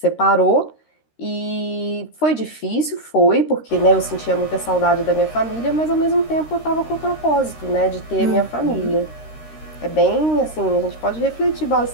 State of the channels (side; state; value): right; late; 13 ms